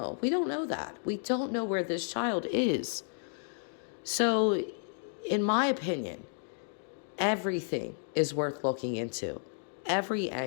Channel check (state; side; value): silent; right; digital silence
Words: We don't know that. We don't know where this child is. So, in my opinion, everything is worth looking into. Every